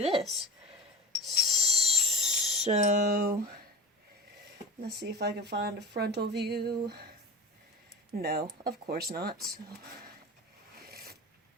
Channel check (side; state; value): both; normal; correlation 0.34